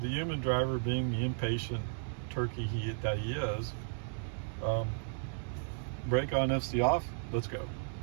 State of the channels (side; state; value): left; silent; digital silence